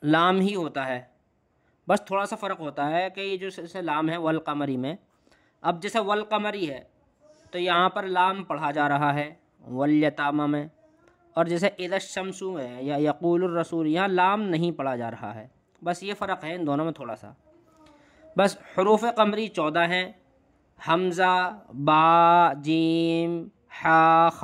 لام ہی ہوتا ہے، بس تھوڑا سا فرق ہوتا ہے کہ یہ جو جیسے لام ہے والقمری میں، اب جیسے والقمری ہے تو یہاں پر لام پڑھا جا رہا ہے والیتامہ میں، اور جیسے اذا الشمس ہے یا یقول الرسول یہاں لام نہیں پڑھا جا رہا ہے، بس یہ فرق ہے ان دونوں میں تھوڑا سا۔ بس حروف قمری 14 ہیں: حمزہ، با، جیم، حا،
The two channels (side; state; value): both; identical; correlation 1.00